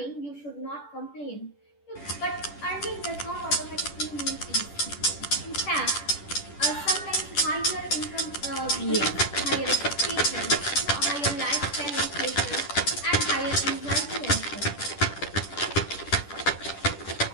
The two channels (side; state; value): right; late; 10 ms